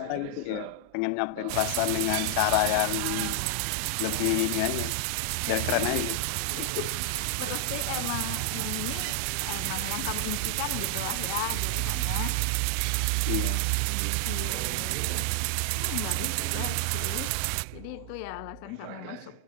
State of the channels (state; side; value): different; both; correlation 0.00